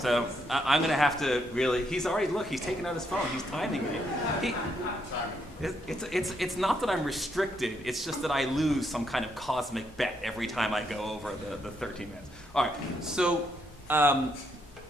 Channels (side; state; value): both; normal; correlation 0.76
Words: So I'm going to have to really, he's taken out his phone. He's timing me. It's not that I'm restricted. It's just that I lose some kind of cosmic bet every time I go over the 13 minutes. All right, so